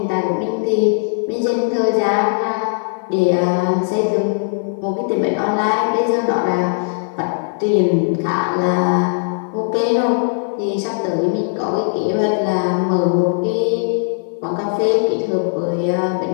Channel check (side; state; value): right; silent; 55 dB below the other